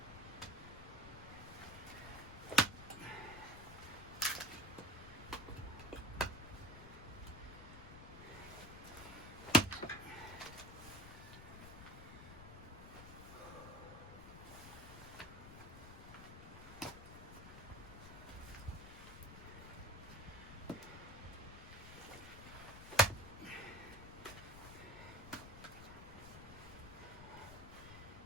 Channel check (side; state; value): left; noise; rumble, 12 dB below the sound